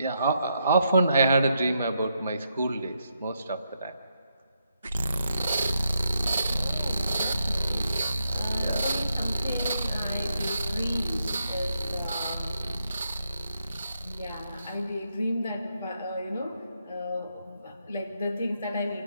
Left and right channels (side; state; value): both; inverted; correlation -0.81